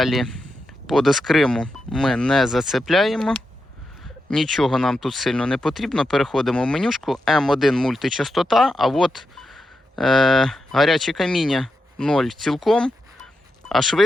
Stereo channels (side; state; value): both; normal; correlation 0.87